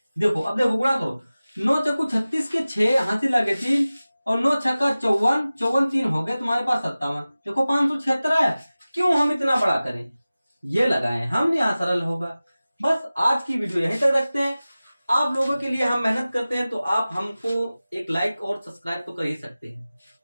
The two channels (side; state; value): both; inverted; correlation -0.97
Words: देखो अब देखो गुणा करो, 9 चक्कू 36 के 6, हाथी लगे 3, और 9 छक्का 54, 54 3 हो गए तुम्हारे पास 57। देखो 576 है। क्यों हम इतना बड़ा करें? ये लगाएं, हम यहाँ सरल होगा। बस आज की वीडियो यहीं तक रखते हैं। आप लोगों के लिए हम मेहनत करते हैं, तो आप हमको एक लाइक और सब्सक्राइब तो कर ही सकते हैं।